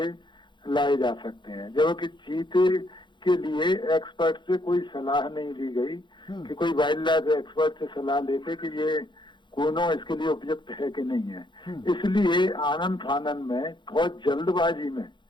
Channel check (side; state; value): right; late; 0.23 ms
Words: लाए जा सकते हैं, जबकि चीते के लिए एक्सपर्ट से कोई सलाह नहीं ली गई कि कोई वाइल्ड लाइफ एक्सपर्ट से सलाह लेके कि ये कूनो इसके लिए उपयुक्त है कि नहीं है। इसलिए आनंद फानन में बहुत जल्दबाजी में